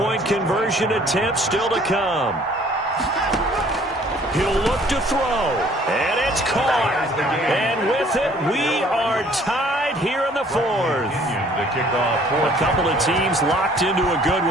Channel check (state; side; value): normal; both; correlation 0.57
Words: conversion attempt still to come. He'll look to throw, and it's caught. And with it, we are tied here in the 4th. A couple of teams locked into a good